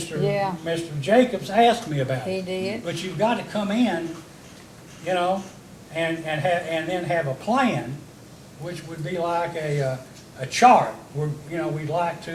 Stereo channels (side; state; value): both; identical; correlation 1.00